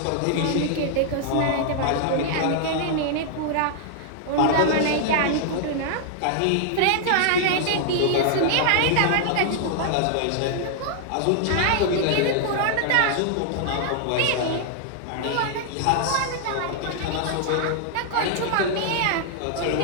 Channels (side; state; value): both; different; correlation -0.01